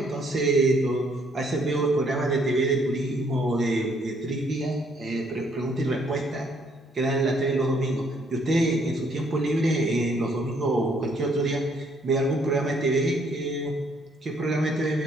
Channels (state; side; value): normal; both; correlation 0.67